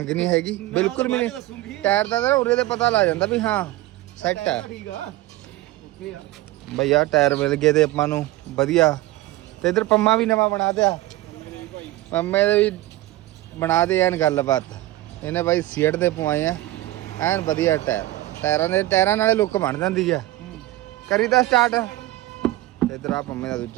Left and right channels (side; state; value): left; quieter; 16.9 dB